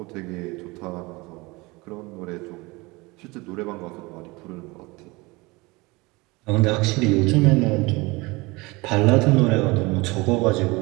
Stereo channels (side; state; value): left; quieter; 24.0 dB